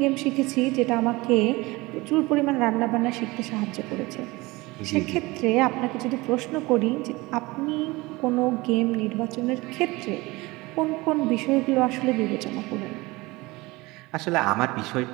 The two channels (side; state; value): left; quieter; 22.0 dB